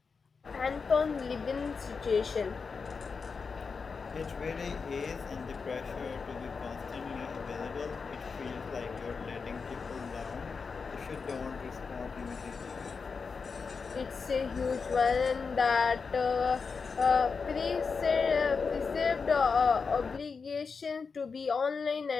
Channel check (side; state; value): right; quieter; 5.1 dB